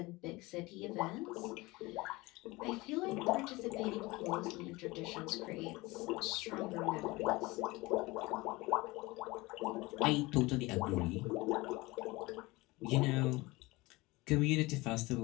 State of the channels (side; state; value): right; quieter; 22.1 dB